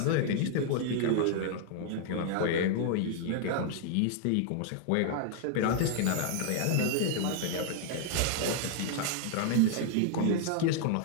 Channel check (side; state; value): both; different; correlation 0.00